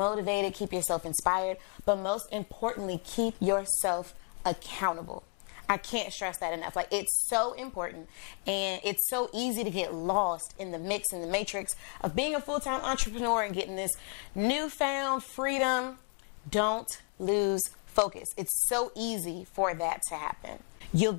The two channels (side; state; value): right; quieter; 36.6 dB